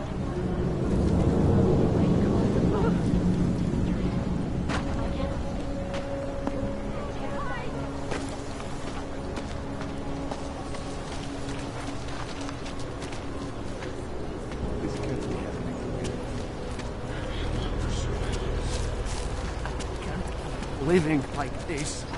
Living like this.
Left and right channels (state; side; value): identical; both; correlation 1.00